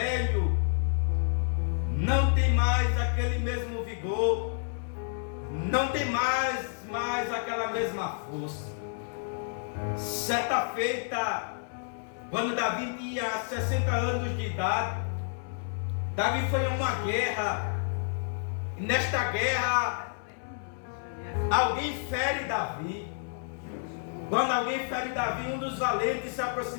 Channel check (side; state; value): right; silent; 58 dB below the other